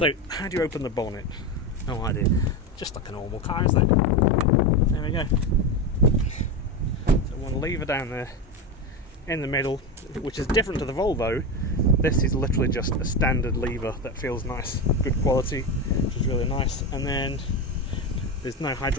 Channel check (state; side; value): normal; both; correlation 0.17